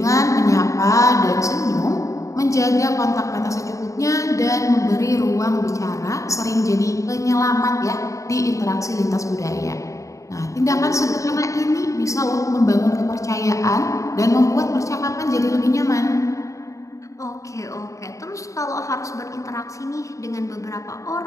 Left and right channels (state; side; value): late; right; 0.15 ms